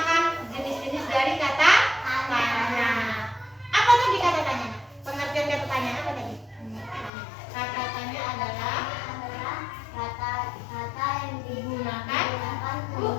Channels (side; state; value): right; drops out; at 7.1 s